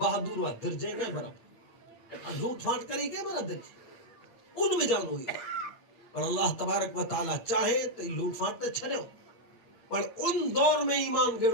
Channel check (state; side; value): late; right; 8.7 ms